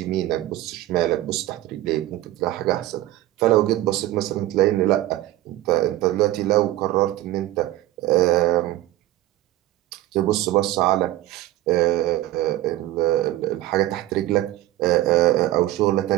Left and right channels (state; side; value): quieter; left; 15.3 dB